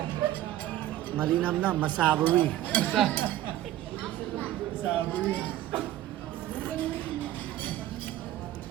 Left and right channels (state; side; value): quieter; left; 13.9 dB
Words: Malinam na, masavory. Sabi.